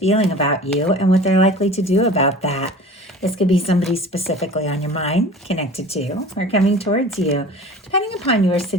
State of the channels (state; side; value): normal; both; correlation 0.40